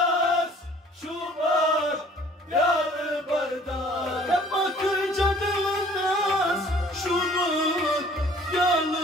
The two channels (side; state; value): both; normal; correlation 0.54